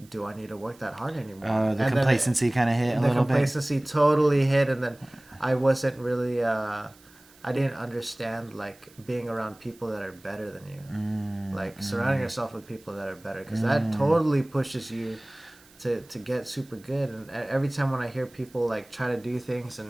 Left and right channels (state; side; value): noise; right; hiss, 27 dB below the sound